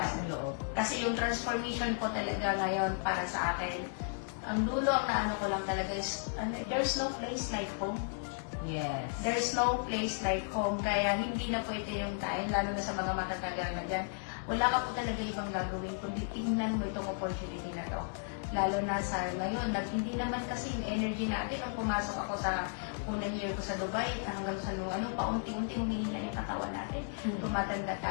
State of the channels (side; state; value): right; silent; digital silence